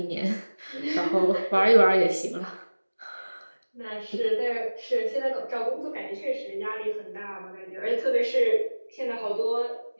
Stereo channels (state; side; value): inverted; both; correlation -1.00